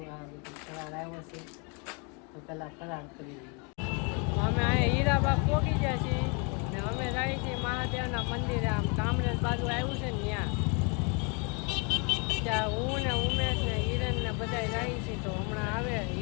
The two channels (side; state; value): right; quieter; 34.3 dB